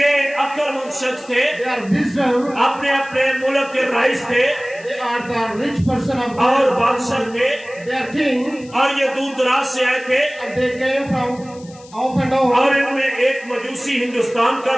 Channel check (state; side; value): noise; left; hiss, 24 dB below the sound